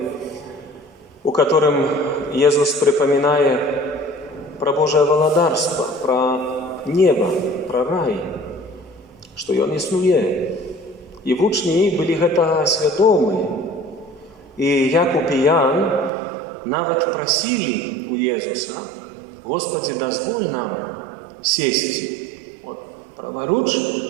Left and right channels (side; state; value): left; drops out; at 16.1 s